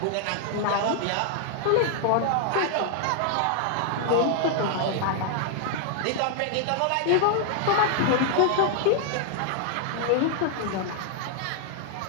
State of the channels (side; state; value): both; different; correlation 0.00